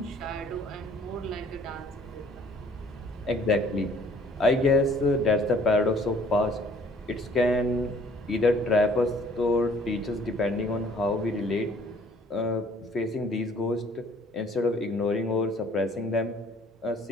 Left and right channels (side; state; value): both; normal; correlation 0.57